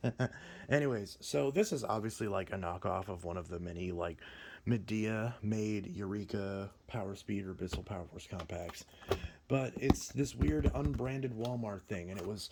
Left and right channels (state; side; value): identical; both; correlation 1.00